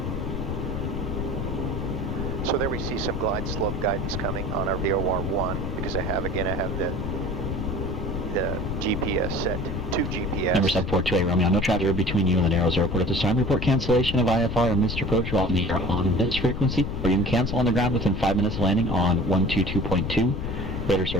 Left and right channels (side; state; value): left; noise; rumble, 4 dB below the sound